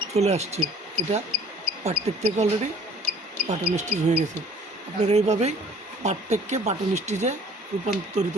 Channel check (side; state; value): both; normal; correlation 0.53